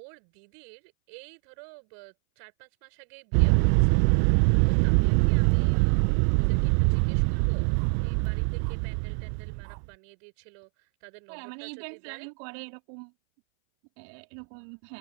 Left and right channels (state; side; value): silent; left; 61 dB below the other